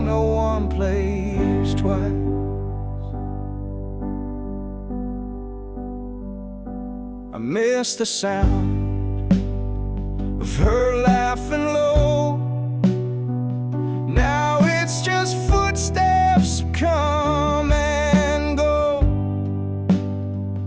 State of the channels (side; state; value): both; identical; correlation 1.00